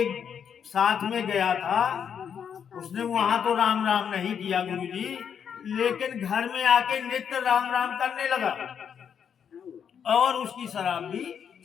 साथ में गया था उसने वहां तो राम राम नहीं किया गुरुजी, लेकिन घर में आके नित्य राम राम करने लगा और उसकी शराब भी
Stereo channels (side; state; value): right; quieter; 7.7 dB